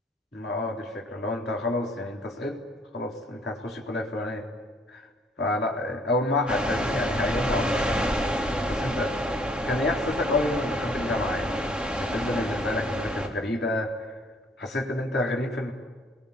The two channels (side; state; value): both; normal; correlation 0.61